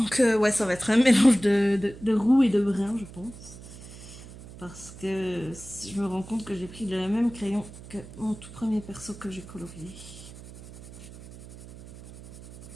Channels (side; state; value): right; noise; hum, 16 dB below the sound